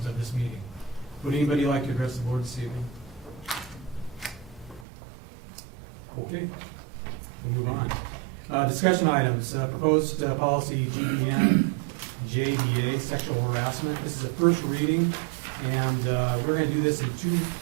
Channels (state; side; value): drops out; left; at 4.9 s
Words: of this meeting. Would anybody like to address the board this evening? Okay, we'll move on. Discussion items. Proposed policy GBN JDA, sexual harassment. This is a first reading, and we're going to do this in two.